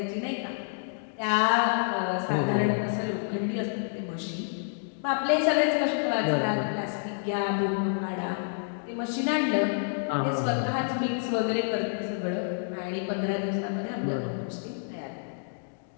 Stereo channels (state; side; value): silent; right; digital silence